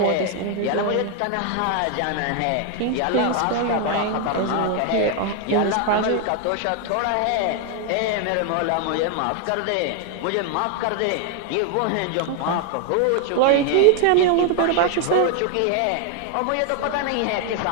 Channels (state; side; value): different; both; correlation 0.01